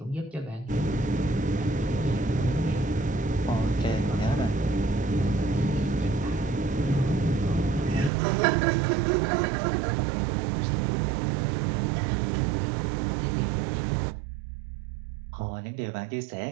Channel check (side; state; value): left; drops out; at 8.1 s